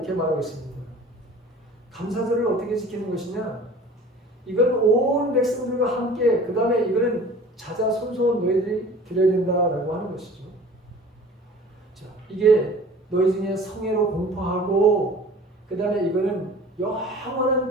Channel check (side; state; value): both; normal; correlation 0.44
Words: 말하고 있습니다. 감사절을 어떻게 지키는 것이냐? 이건 온 백성들과 함께 그 다음에 이거는 자자손손 너희들이 드려야 된다라고 하는 것이죠. 자, 이게 너희 중에 성애로 공포하고 그 다음에 이거는 영원한